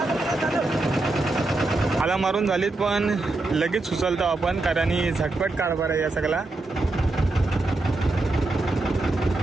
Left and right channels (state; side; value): quieter; left; 3.0 dB